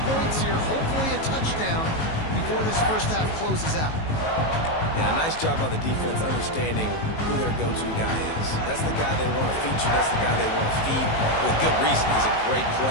points here, hopefully a touchdown before this first half closes out. Yeah, nice job by the defense understanding who their go-to guy is. That's the guy they want to feature. That's the guy they want to feed with good reason. He's a great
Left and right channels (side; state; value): right; late; 19 ms